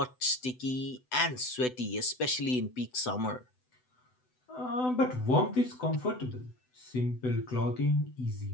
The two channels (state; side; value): late; right; 7.9 ms